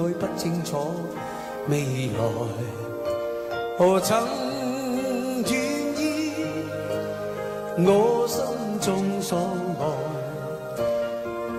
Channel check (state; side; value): identical; both; correlation 1.00